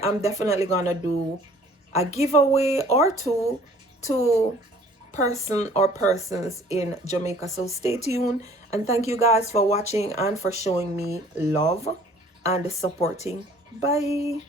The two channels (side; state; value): both; normal; correlation 0.54